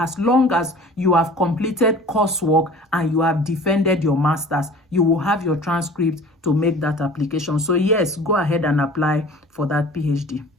long as you have completed coursework and you have defended your master's. You will have your transcript to make that application. So yes, go ahead and apply for that PhD.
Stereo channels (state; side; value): normal; both; correlation 0.44